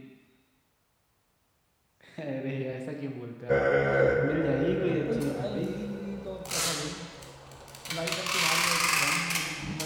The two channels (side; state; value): both; identical; correlation 1.00